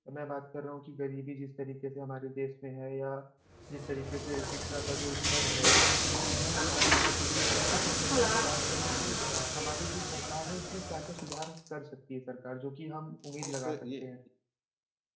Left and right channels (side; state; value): both; identical; correlation 1.00